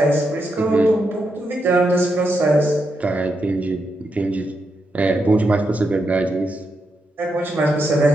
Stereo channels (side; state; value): both; normal; correlation 0.83